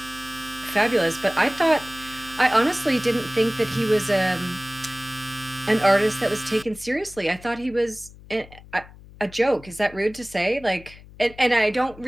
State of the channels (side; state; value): left; noise; hum, 20 dB below the sound